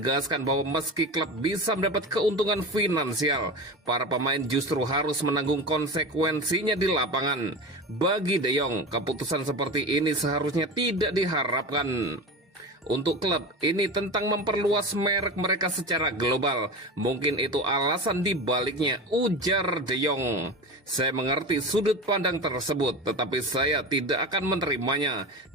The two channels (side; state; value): both; normal; correlation 0.28